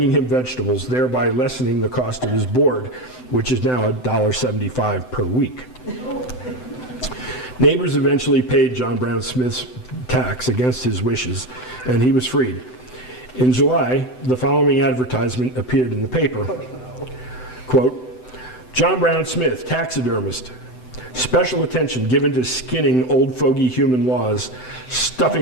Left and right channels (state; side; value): late; right; 7.9 ms